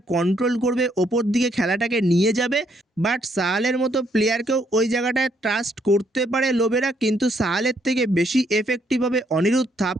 কন্ট্রোল করবে, ওপর দিকে খেলাটাকে নিয়ে যাবে, বাট সাহালের মতো প্লেয়ারকেও ওই জায়গাটায় ট্রাস্ট করতে পারে লোবেরা, কিন্তু সাহালের থেকে বেশি এফেক্টিভ হবে অনিরুদ্ধ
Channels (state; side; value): normal; both; correlation 0.71